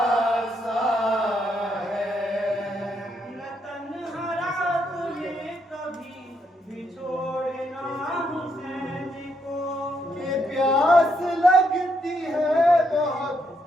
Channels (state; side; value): normal; both; correlation 0.76